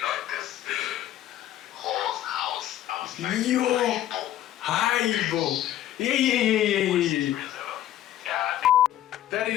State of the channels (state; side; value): quieter; right; 12.6 dB